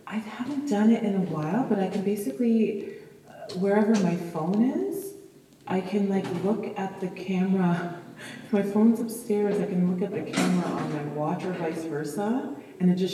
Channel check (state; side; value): identical; both; correlation 1.00